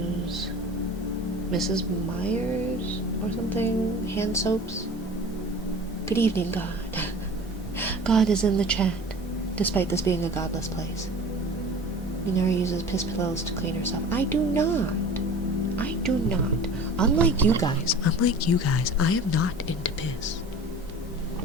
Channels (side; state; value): both; normal; correlation 0.40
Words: Mrs. Myers or something hand soaps. Good evening, God. God is in the chat, despite this being a godless place. Minari uses piss pillows to clean herself. I do not. Unlike you guys, I am not into piss.